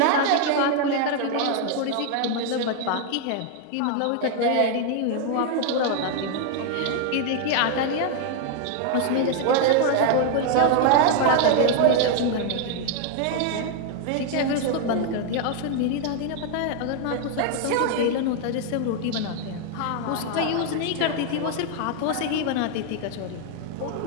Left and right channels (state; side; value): different; both; correlation 0.00